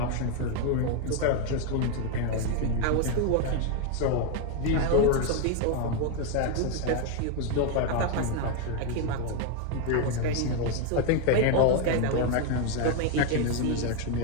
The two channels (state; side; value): different; both; correlation 0.01